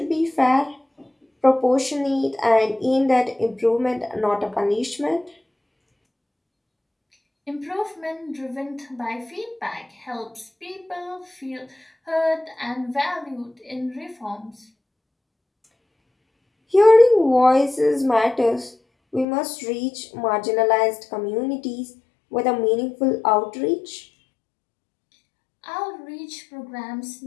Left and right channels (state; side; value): drops out; right; at 19.2 s